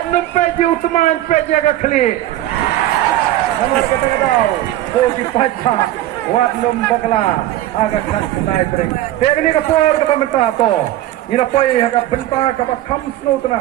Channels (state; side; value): quieter; left; 14.3 dB